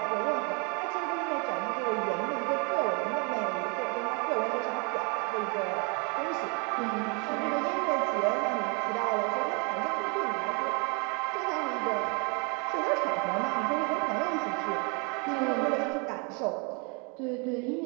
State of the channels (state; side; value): quieter; left; 33.5 dB